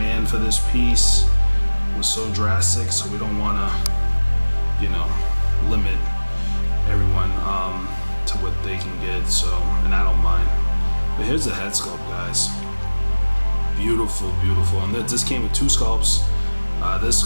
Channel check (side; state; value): both; inverted; correlation -1.00